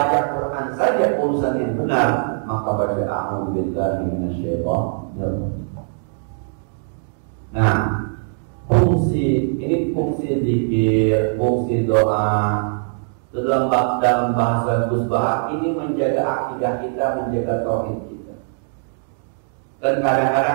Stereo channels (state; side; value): silent; left; digital silence